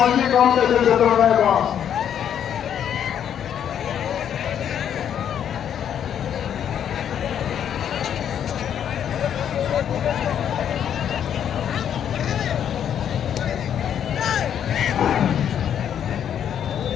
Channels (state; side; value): quieter; right; 9.2 dB